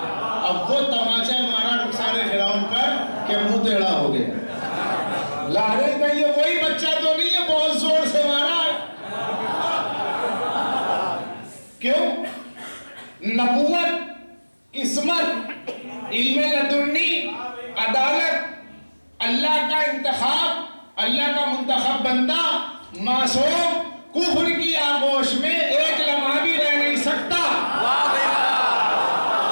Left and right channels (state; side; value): inverted; both; correlation -1.00